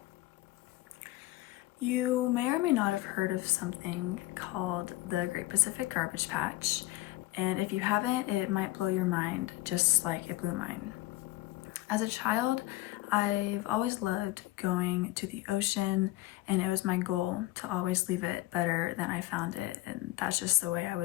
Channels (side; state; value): right; quieter; 17.9 dB